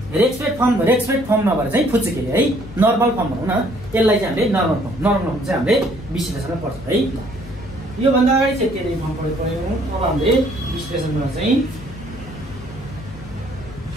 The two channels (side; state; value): left; noise; hum, 16 dB below the sound